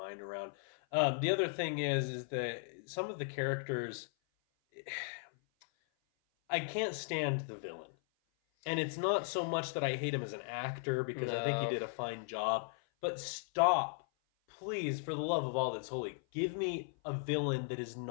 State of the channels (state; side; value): silent; right; 53 dB below the other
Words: around. The other thing is that some of the characters, I can't stand the villain. And it's not so much that I hate him as an actor, because I think he did a fine job, but stop, please, for the love of all that's holy, give me a villain that is